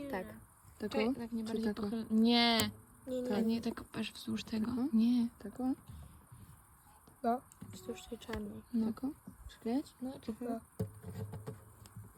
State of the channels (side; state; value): both; identical; correlation 1.00